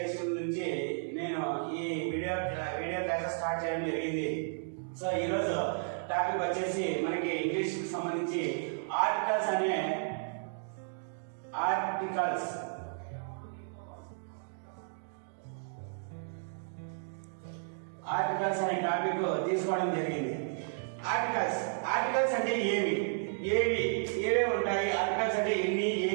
నుంచి నేను ఈ వీడియో క్లాసెస్ స్టార్ట్ చేయడం జరిగింది. సో ఈరోజు టాపిక్ వచ్చేసి మనకి ఇంగ్లీష్కి సంబంధించి ఆర్టికల్స్ అనే టాపిక్ తీసుకోవడం జరిగింది. ఆర్టికల్స్ అంటే ఏవే ఉంటాయి, ఆర్టికల్స్ అంటే ఎన్ని,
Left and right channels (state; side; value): silent; left; digital silence